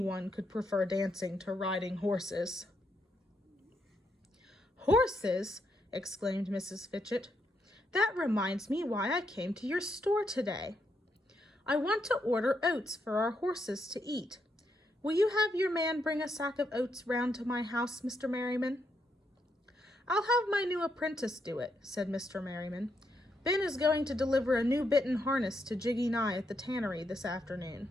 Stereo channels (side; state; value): both; normal; correlation 0.79